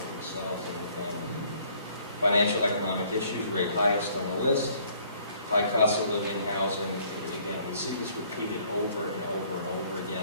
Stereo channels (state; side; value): inverted; both; correlation -0.60